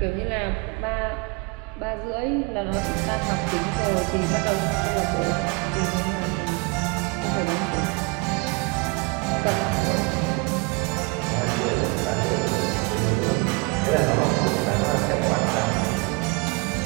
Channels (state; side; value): quieter; left; 28.3 dB